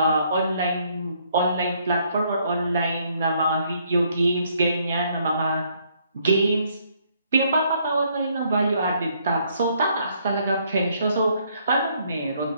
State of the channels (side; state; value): both; inverted; correlation -0.68